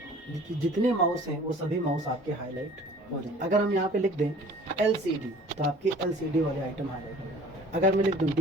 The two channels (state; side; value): normal; both; correlation 0.48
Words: जितने माउस हैं वो सभी माउस आपके हाईलाइट हो जाए। अगर हम यहाँ पे लिख दें LCD तो आपके LCD वाले आइटम हाईलाइट हो जाए। अगर मैं लिख दूँ